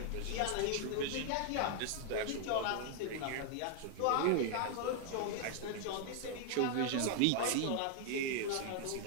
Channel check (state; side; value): different; both; correlation 0.00